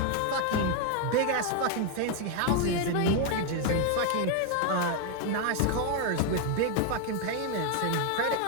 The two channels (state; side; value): different; both; correlation 0.01